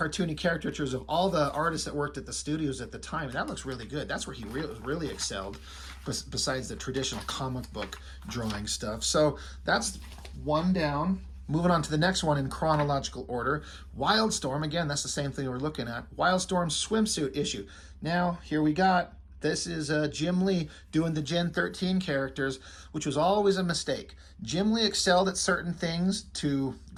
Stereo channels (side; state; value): both; identical; correlation 1.00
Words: caricatures of all the artists that worked at the studios at the time. And that looks really good. That's where he really excelled, besides the traditional comic book drawing stuff. So that's one down. Moving on to the next one in chronological order. Wildstorm, again, that's the same thing we're looking at. Wildstorm swimsuit issue. Now, here we got, this is Jim Lee doing the Gen 13 characters, which was always a mistake. Jim Lee excelled at certain things to